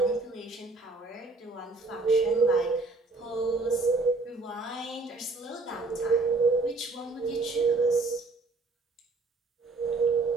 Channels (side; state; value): left; quieter; 3.5 dB